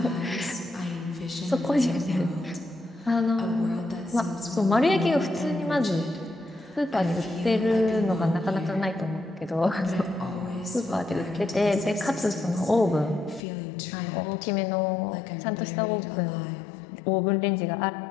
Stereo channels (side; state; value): right; drops out; at 13.4 s